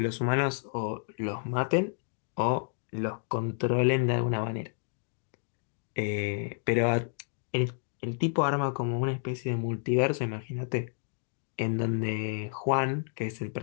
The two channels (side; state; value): right; silent; digital silence